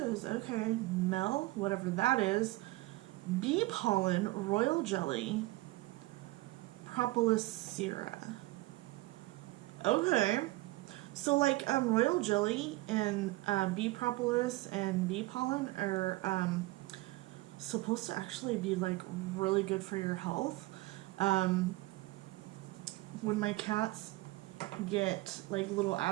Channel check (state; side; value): quieter; left; 20.2 dB